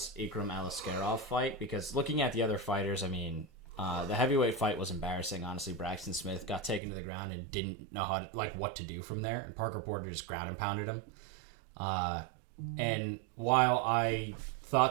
Ikram Aliskerov fight, because looking at the other fighters, the heavyweight fight was embarrassing. Honestly, Braxton Smith got taken to the ground and didn't know what to do from there, and Parker Porter just ground and pounded him. And while I thought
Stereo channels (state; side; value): drops out; left; at 6.8 s